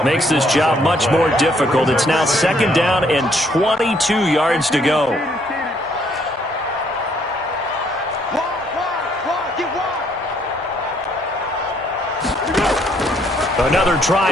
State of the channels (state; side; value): normal; both; correlation 0.67